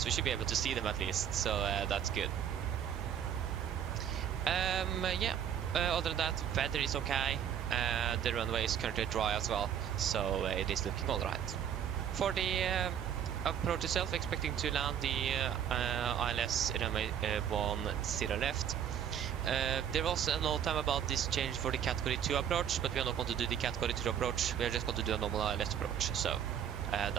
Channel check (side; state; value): left; quieter; 9.1 dB